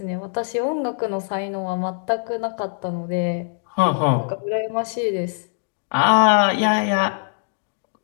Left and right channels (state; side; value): silent; right; digital silence